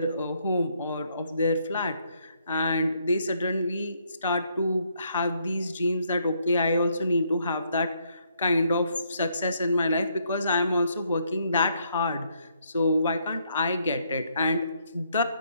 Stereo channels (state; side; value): inverted; both; correlation -0.72